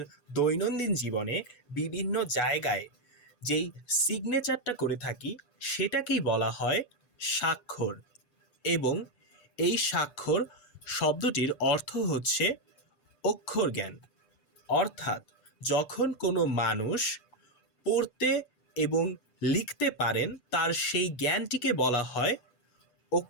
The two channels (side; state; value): right; late; 6.8 ms